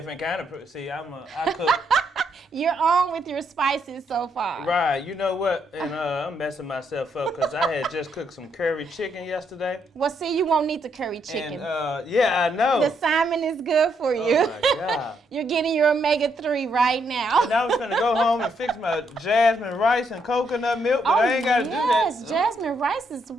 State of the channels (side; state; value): both; normal; correlation 0.75